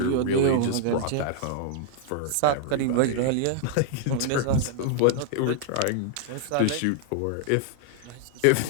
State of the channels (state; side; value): different; both; correlation -0.01